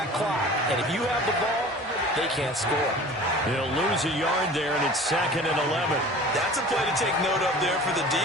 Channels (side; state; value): both; normal; correlation 0.42